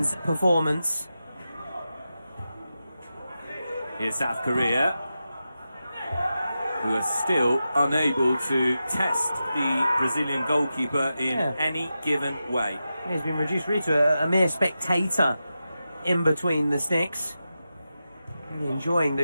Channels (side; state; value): both; inverted; correlation -0.91